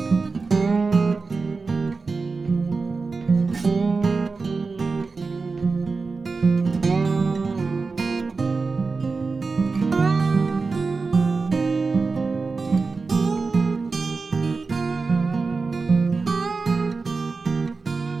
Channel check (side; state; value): left; quieter; 4.3 dB